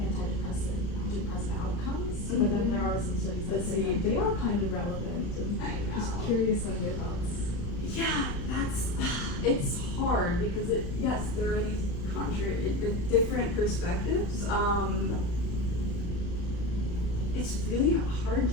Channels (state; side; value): late; right; 34 ms